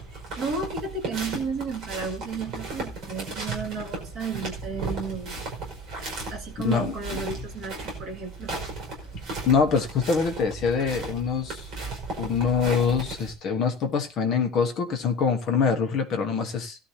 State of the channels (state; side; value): quieter; right; 3.2 dB